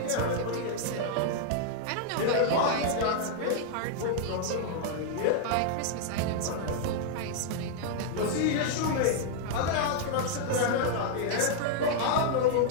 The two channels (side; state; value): both; different; correlation -0.01